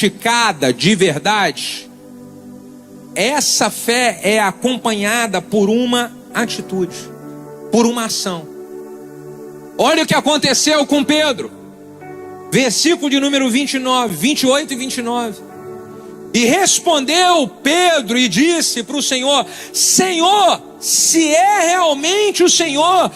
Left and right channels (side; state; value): both; identical; correlation 1.00